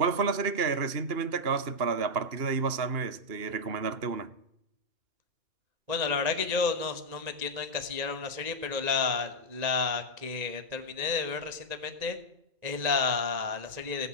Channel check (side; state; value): left; late; 1.9 ms